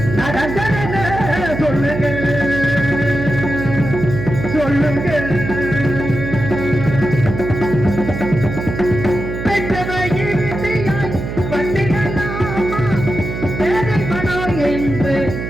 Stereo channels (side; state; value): right; noise; hum, 6 dB below the sound